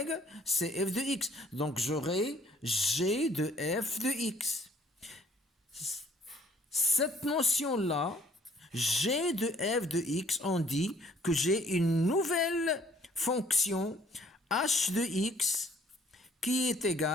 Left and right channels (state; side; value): normal; both; correlation 0.59